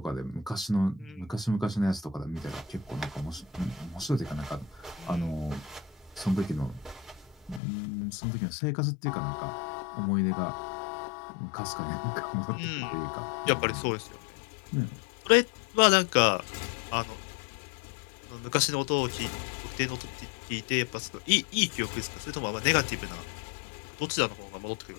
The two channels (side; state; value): right; drops out; at 7.6 s